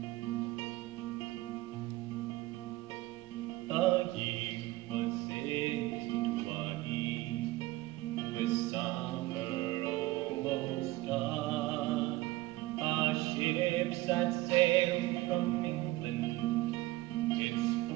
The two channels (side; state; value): left; quieter; 18.4 dB